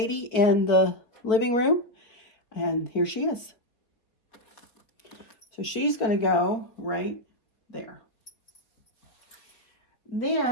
in the living room. And here she is. So she's going to go right there.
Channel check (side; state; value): right; late; 4.4 ms